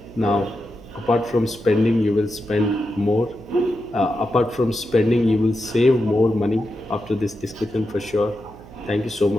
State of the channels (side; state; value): right; noise; hum, 19 dB below the sound